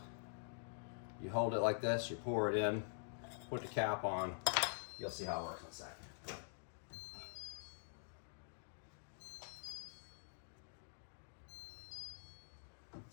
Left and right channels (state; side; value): silent; right; digital silence